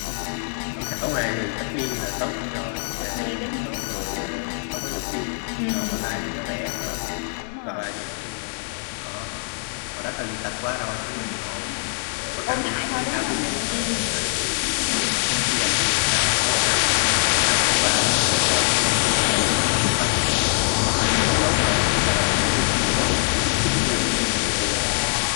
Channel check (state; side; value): silent; right; 63 dB below the other